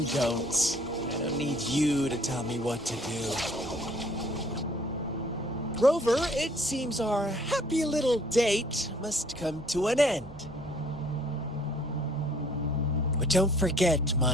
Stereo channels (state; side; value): normal; both; correlation 0.59